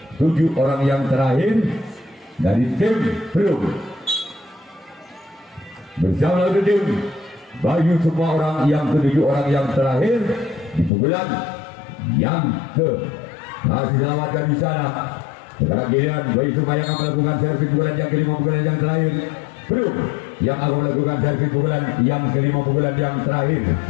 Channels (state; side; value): drops out; right; at 10.9 s